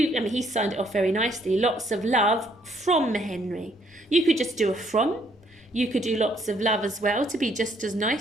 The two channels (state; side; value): normal; both; correlation 0.67